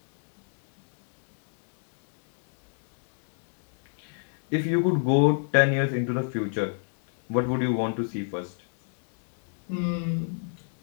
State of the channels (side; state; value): right; silent; digital silence